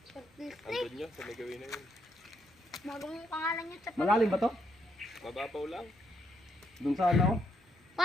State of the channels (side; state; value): both; normal; correlation 0.75